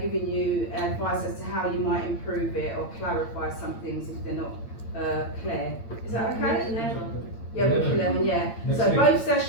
giving you advice as to how you might improve it or clarify some things if they're not clear. Is that okay? Yeah, week 11, yeah. Next so week. both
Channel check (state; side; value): late; right; 8.8 ms